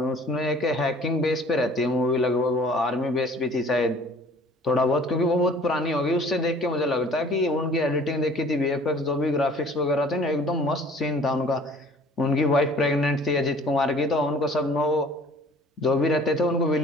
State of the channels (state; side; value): normal; both; correlation 0.51